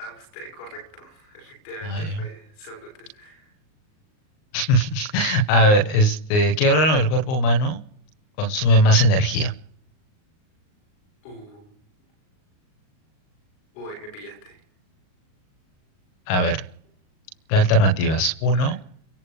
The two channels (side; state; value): right; late; 38 ms